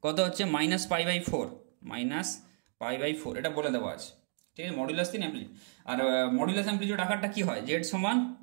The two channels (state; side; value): silent; left; 56 dB below the other